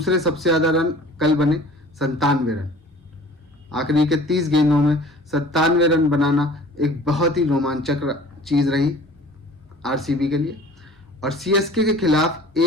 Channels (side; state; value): both; normal; correlation 0.47